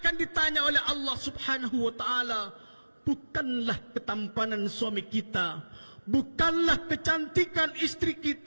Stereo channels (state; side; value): inverted; both; correlation -1.00